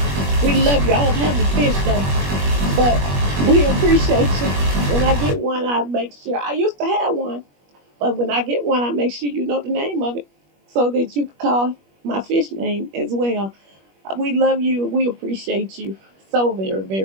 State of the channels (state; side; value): late; left; 21 ms